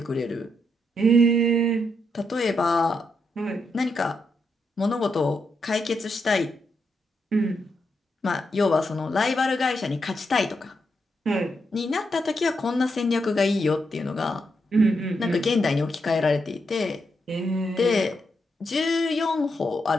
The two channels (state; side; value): normal; both; correlation 0.81